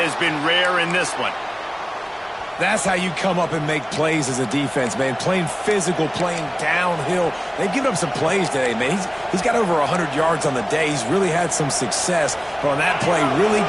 been rare in this one. That's how you come up and make plays as a defense, man. Playing physical, playing downhill. They've given up some plays today, man. He's got over 100 yards on the day. He's really had some success. But on that play, really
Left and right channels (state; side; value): identical; both; correlation 1.00